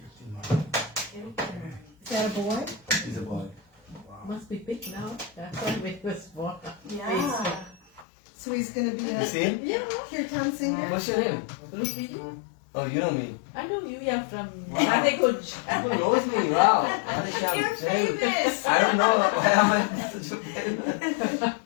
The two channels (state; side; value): drops out; right; at 8.1 s